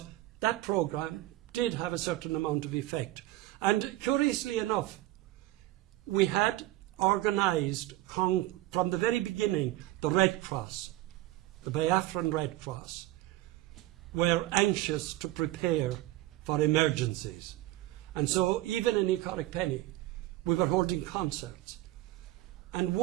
that programme did have a certain amount of effect. And curiously enough, we had organised, from the very beginning, the Red Cross, the Biafran Red Cross, were anxious to prepare for emergencies. And so, even in Ecoric Penny, we were holding concerts. And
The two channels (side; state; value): left; quieter; 16.7 dB